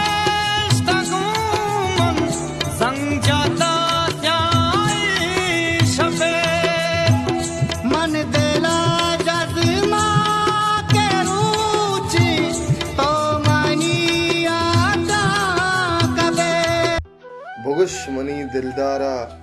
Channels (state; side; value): identical; both; correlation 1.00